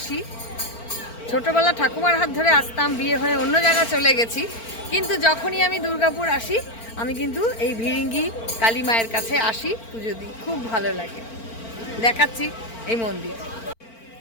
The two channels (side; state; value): right; late; 4.4 ms